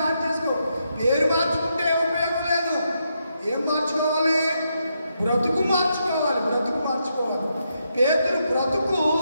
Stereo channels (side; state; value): both; inverted; correlation -0.81